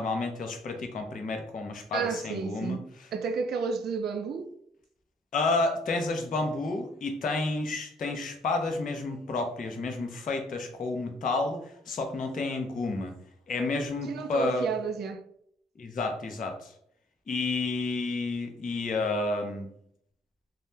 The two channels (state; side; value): normal; both; correlation 0.61